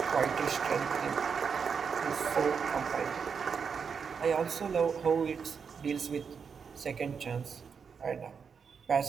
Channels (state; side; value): quieter; left; 6.2 dB